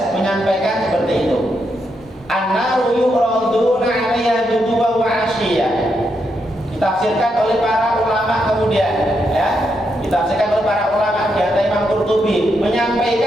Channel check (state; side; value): normal; both; correlation 0.81